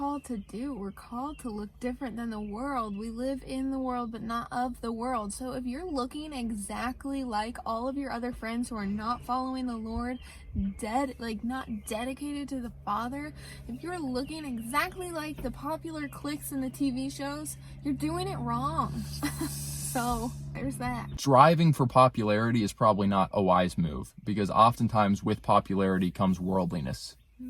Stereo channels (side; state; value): both; identical; correlation 1.00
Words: to do. We're called to look different than the world. We live in the world, but not of the world. So if you're looking exactly like all of your other friends who are not following the Lord, not dedicated to the Father, if you're looking exactly like the popular cliques in the TV shows, you're doing it wrong. So there's that. Driving for popularity is probably not a wise move because oftentimes with popularity comes worldliness.